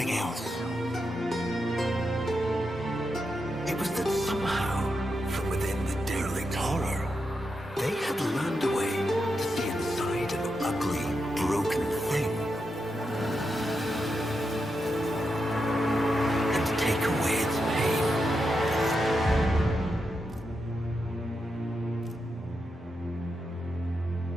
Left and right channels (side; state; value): both; normal; correlation 0.86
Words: else. It was that somehow, from within the derelict horror, they had learned a way to see inside an ugly, broken thing. And to take away its pain.